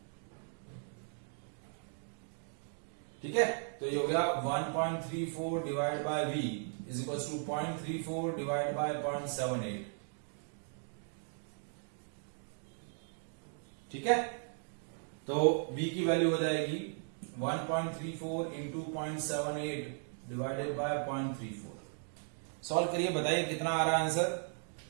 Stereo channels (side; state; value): left; silent; 53 dB below the other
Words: ठीक है, तो ये हो गया 1.34 divide by v is equal to 0.34 divide by 0.78। ठीक है, तो v की वैल्यू हो जाएगी 1.34 इंटू 0.78 डिवाइडेड बाय 0.34। सॉल्व करिए, बताइए कितना आ रहा है आंसर?